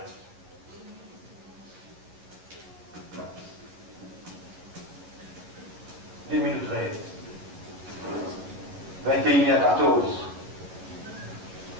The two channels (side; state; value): left; late; 11 ms